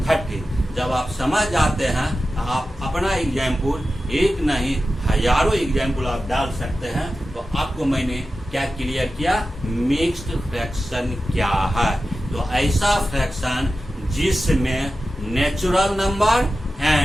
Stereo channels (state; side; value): normal; both; correlation 0.93